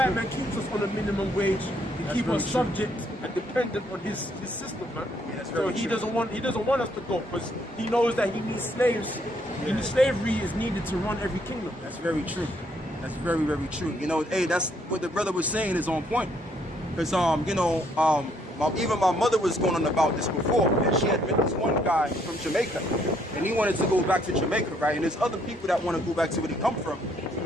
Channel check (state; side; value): normal; both; correlation 0.69